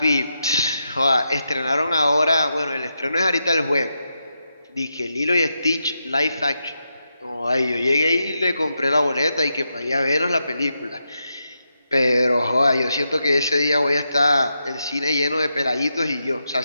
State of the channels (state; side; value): inverted; both; correlation -0.85